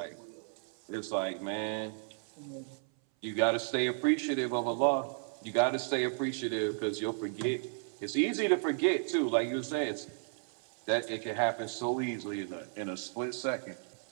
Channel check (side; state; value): left; silent; 55 dB below the other